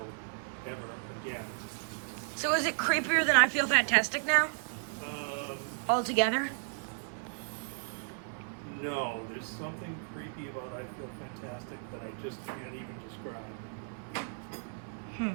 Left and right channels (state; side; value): silent; left; 55 dB below the other